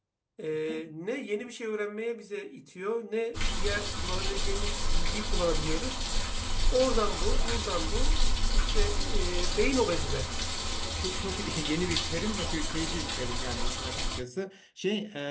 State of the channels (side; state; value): both; identical; correlation 1.00